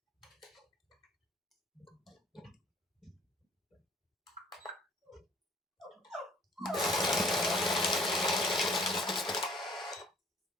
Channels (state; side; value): normal; both; correlation 0.55